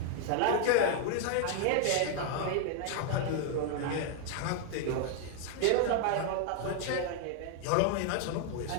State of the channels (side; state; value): both; different; correlation 0.00